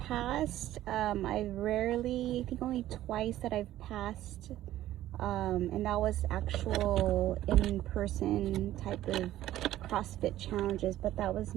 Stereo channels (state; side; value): quieter; left; 13.8 dB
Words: I think only twice that I've passed, and that was actual in-person type of CrossFit challenges, but that was